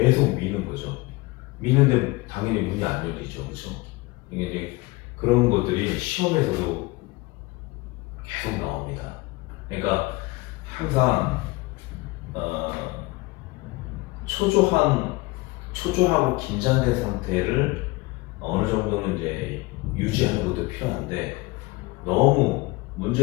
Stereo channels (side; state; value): right; quieter; 22.9 dB